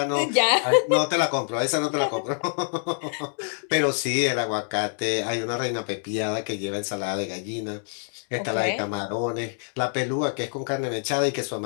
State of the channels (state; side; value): silent; right; 61 dB below the other